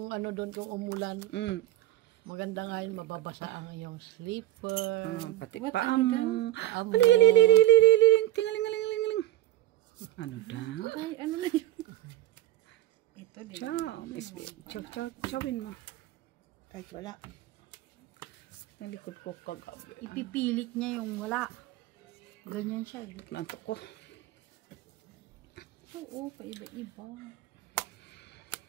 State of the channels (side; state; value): left; quieter; 14.6 dB